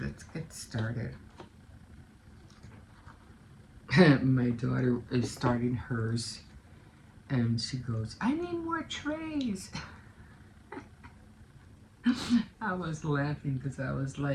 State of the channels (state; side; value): identical; both; correlation 1.00